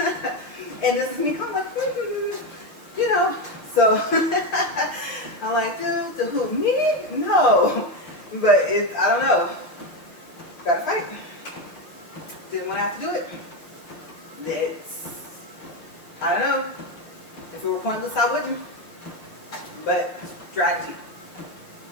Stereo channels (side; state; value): right; late; 6.1 ms